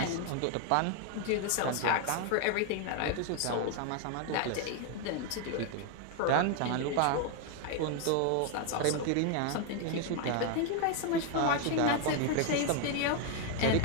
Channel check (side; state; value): both; different; correlation 0.01